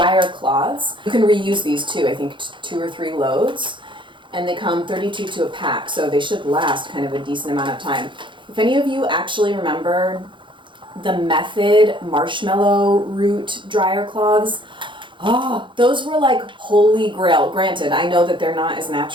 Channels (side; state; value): left; late; 0.23 ms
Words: cloths. You can reuse these too, I think 2 or 3 loads. And they come 32 to a pack, so they should last kind of a decent amount of time. If any of you actually remember the Method marshmallow root dryer cloths, those were like holy grail. Granted, I know that they're not as